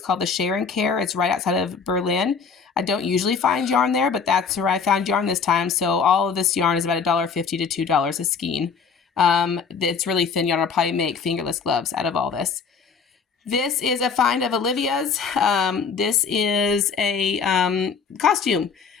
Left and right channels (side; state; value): right; quieter; 5.7 dB